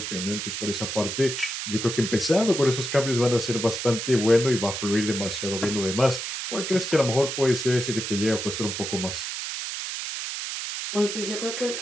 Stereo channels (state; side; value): noise; right; hiss, 5 dB below the sound